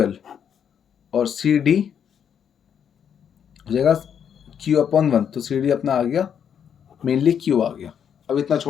और सी डी हो जाएगा क्यू अपॉन 1, तो सी डी अपना आ गया मेनली क्यू आ गया। अब इतना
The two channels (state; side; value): quieter; right; 8.2 dB